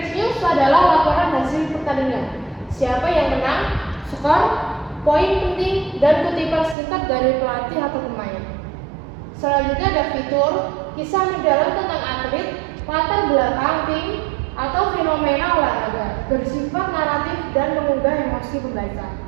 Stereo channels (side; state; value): left; drops out; at 6.8 s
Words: news adalah laporan hasil pertandingan, siapa yang menang, skor, poin penting, dan kutipan singkat dari pelatih atau pemain. Selanjutnya ada fitur, kisah mendalam tentang atlet, latar belakang tim, atau fenomena olahraga, bersifat naratif dan mengunggah emosi pembaca.